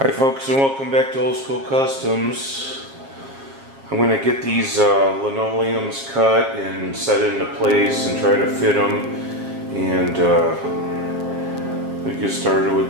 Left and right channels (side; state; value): left; late; 7.4 ms